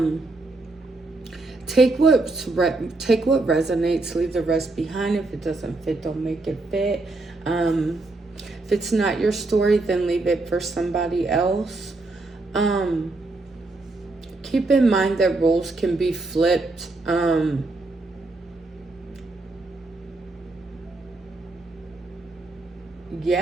take what resonates, leave the rest behind. If it doesn't fit, don't make it fit. If it's not your story, then leave it for somebody else. Um, Keep in mind that roles can be flipped.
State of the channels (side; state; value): left; quieter; 3.2 dB